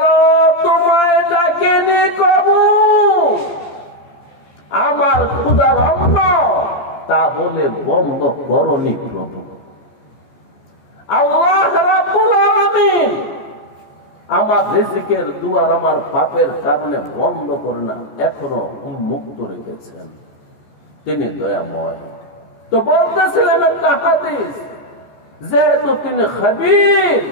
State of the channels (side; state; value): right; late; 14 ms